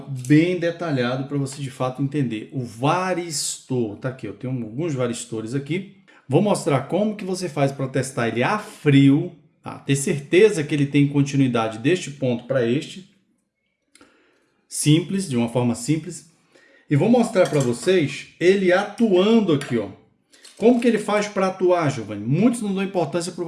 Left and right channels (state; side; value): identical; both; correlation 1.00